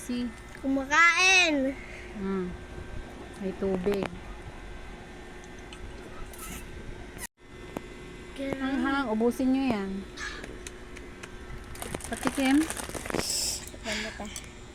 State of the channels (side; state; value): both; identical; correlation 1.00